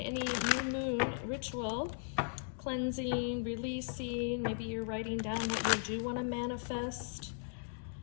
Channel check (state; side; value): silent; right; digital silence